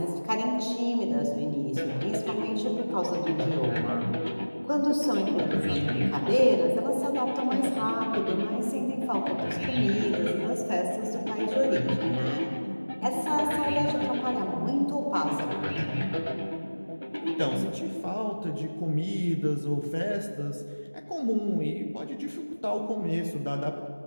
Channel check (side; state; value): both; inverted; correlation -1.00